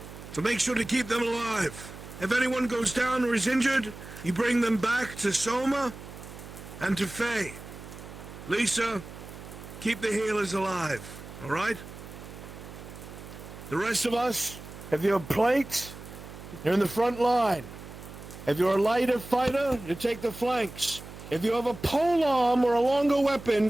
So make sure to keep them alive. If anyone goes down or is injured, you bring them back to Soma and to Faye. Lisa, keep the healers alive, all right? The rest of us, if you're plates, you're in the front line. If you're a lighter fighter, you take the flanks. If you have a pole arm or a longer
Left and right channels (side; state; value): right; noise; hum, 14 dB below the sound